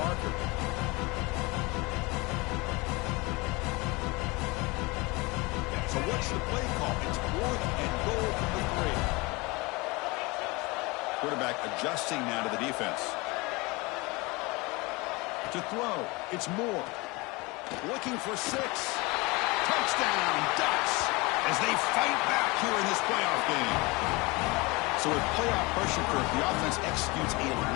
So what's the play call? It's fourth and goal from the 3. Quarterback adjusting now to the defense. To throw, it's Moore. Looking for 6. Touchdown, Ducks, as they fight back here in this playoff game. So with playoff pressure, Kirk, the offense executes a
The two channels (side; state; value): right; quieter; 24.9 dB